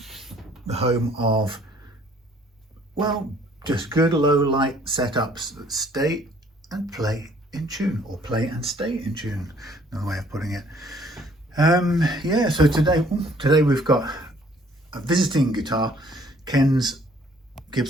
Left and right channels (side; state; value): both; normal; correlation 0.60